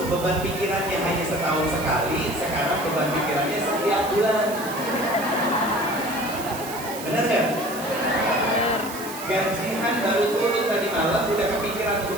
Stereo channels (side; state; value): right; noise; hiss, 12 dB below the sound